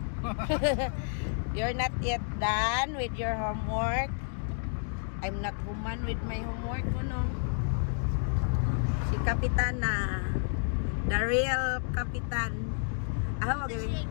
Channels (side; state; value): right; silent; digital silence